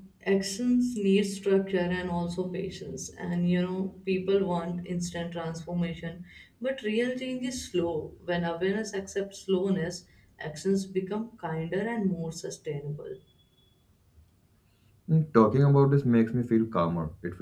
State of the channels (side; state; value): both; identical; correlation 1.00